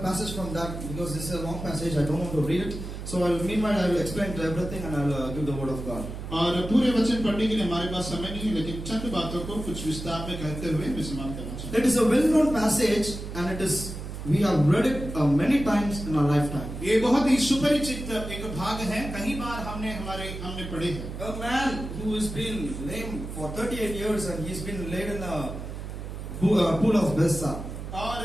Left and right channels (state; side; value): noise; right; hum, 8 dB below the sound